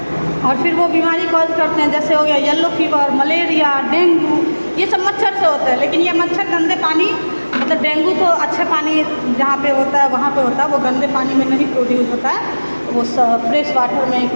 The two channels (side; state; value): both; inverted; correlation -1.00